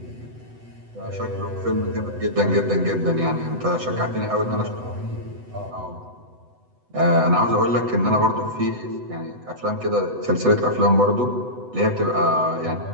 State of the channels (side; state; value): left; late; 8.0 ms